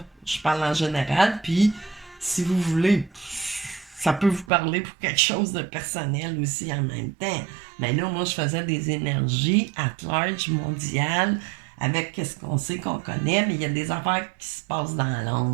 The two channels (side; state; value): left; drops out; at 4.5 s